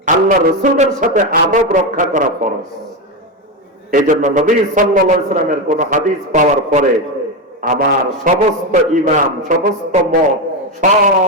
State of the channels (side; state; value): both; normal; correlation 0.12